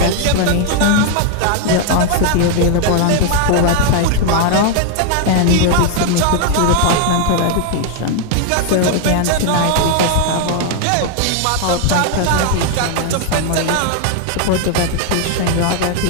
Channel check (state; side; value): different; both; correlation 0.00